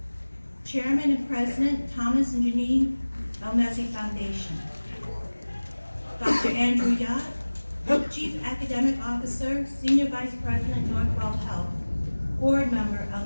Chairman and President, Thomas and Janine Elmezzi Foundation. Dr. Andrew Yott, Chief Academic Officer, Senior Vice President, Northwell Health. Board Member,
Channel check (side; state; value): both; inverted; correlation -1.00